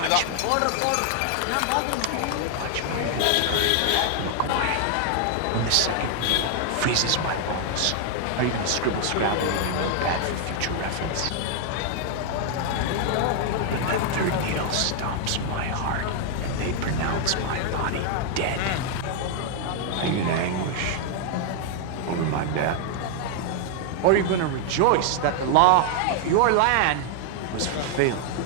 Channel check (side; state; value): both; different; correlation 0.00